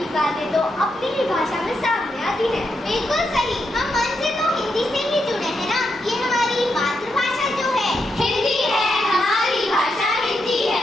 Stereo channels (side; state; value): both; normal; correlation 0.83